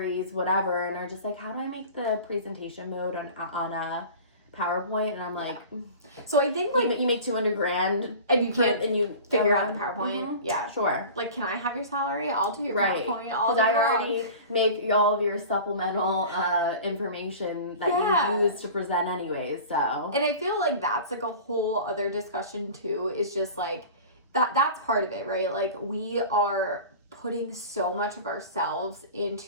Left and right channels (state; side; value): inverted; both; correlation -0.38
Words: whatever, and are just like, how do I make the presentation mode on a PowerPoint? And I'm like, so I think, like, you make $200,000 and you can't, and you figure out the PowerPoint. Yeah, sure. Like, can I have your salary? I'll do your PowerPoint all day I long. already make all of your supplemental information that you use to present anyways. So, and I feel like that's, like, a whole other discussion too. Is just, like, that's part of it, right? Like, we are putting so much of ourselves